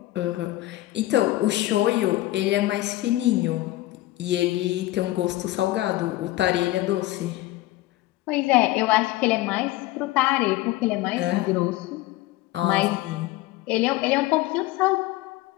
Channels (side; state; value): right; quieter; 17.2 dB